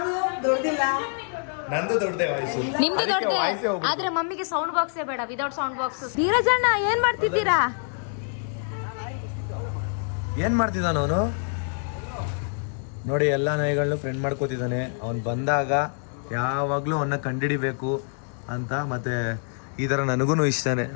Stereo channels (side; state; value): right; silent; 60 dB below the other